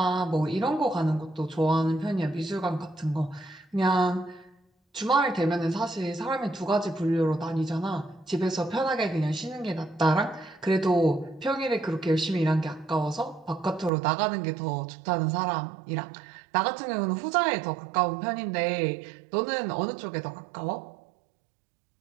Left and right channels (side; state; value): left; drops out; at 13.9 s